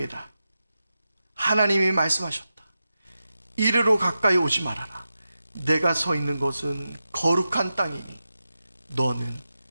하나님이 말씀하셨다. 이리로 가까이 오지 말아라. 내가 서 있는 것은 거룩한 땅이니 너는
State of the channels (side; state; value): both; inverted; correlation -0.91